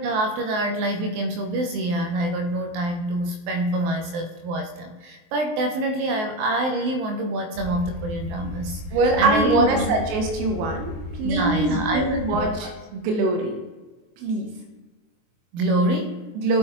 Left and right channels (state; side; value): late; left; 23 ms